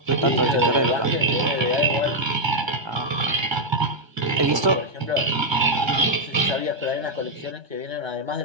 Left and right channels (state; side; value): late; left; 1.3 ms